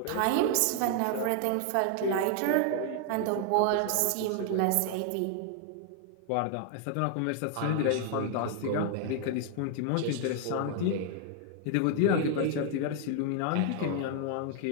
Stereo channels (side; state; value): both; different; correlation 0.00